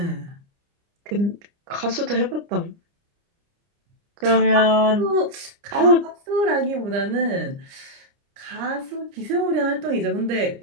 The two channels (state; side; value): late; left; 29 ms